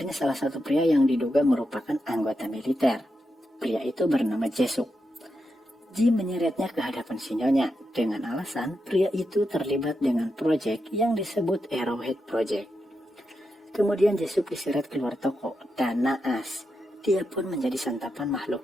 salah satu pria yang diduga merupakan anggota militer. Pria itu bernama Jesuk. Jim menyeretnya ke hadapan si Nyonya dengan alasan pria itu terlibat dengan proyek yang disebut Arrowhead Project. Kemudian Jesuk diseret keluar toko dan naas. Dia pun menjadi santapan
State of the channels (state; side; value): normal; both; correlation 0.86